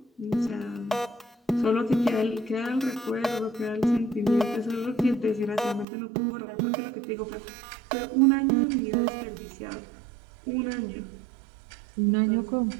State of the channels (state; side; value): drops out; left; at 5.9 s